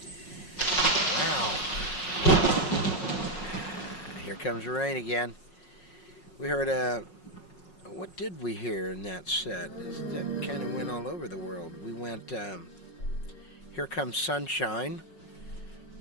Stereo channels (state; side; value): late; right; 5.5 ms